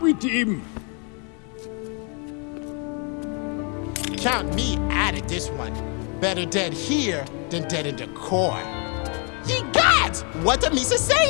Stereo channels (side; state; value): right; quieter; 36.4 dB